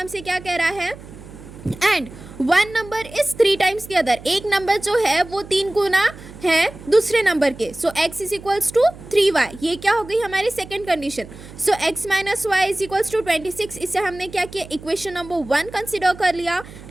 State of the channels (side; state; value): right; noise; hum, 17 dB below the sound